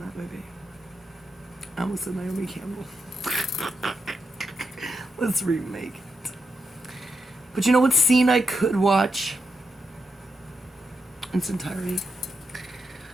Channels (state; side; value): normal; both; correlation 0.84